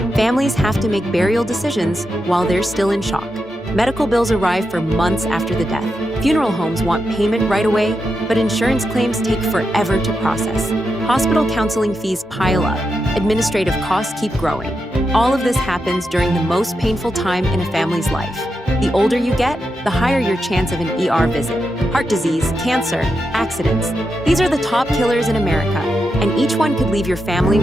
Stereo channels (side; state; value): both; normal; correlation 0.86